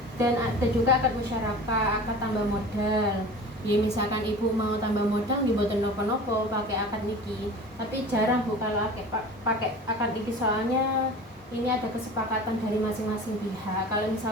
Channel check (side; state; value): both; normal; correlation 0.38